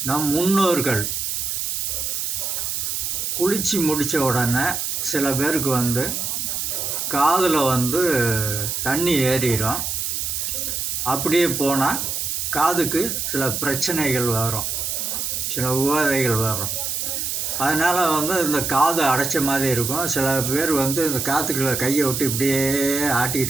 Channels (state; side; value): noise; right; hiss, 2 dB below the sound